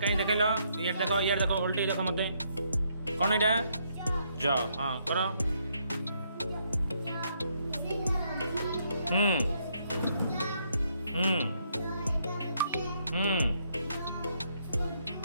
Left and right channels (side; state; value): both; inverted; correlation -0.73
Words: कहीं देख लो ये देखो उल्टी देखो मत कौन एटा ज हाँ करो हम्म हम्म हम्म